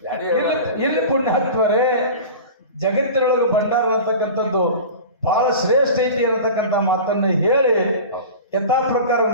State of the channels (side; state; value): both; inverted; correlation -0.35